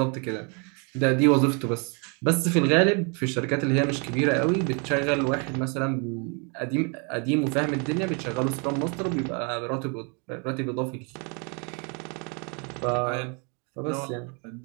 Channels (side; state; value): left; quieter; 34.7 dB